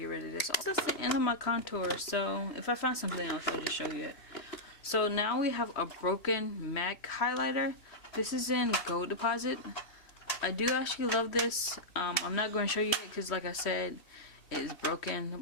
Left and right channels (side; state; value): right; late; 3.1 ms